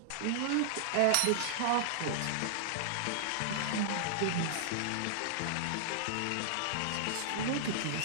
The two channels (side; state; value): both; different; correlation -0.01